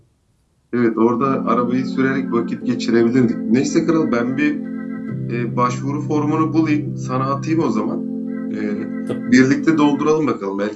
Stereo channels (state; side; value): identical; both; correlation 1.00